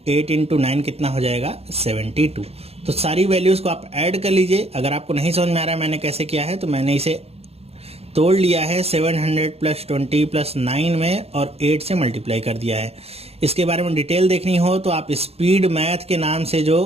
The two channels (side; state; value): left; late; 0.29 ms